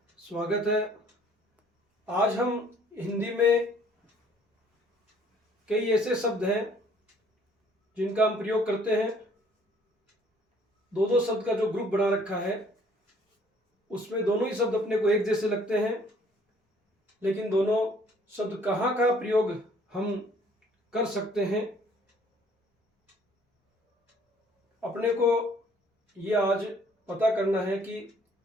स्वागत है। आज हम हिंदी में कई ऐसे शब्द हैं जिनका हम प्रयोग करते हैं। दो दो शब्द का जो ग्रुप बना रखा है उसमें दोनों ही शब्द अपने को एक जैसे लगते हैं, लेकिन दोनों शब्द कहाँ का प्रयोग हम कर सकते हैं अपने को ये आज पता करना है कि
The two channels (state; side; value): normal; both; correlation 0.59